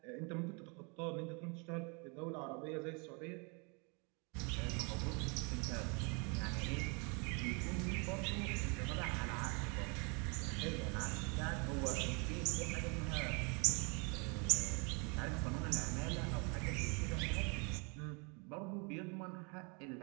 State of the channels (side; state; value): left; quieter; 33.3 dB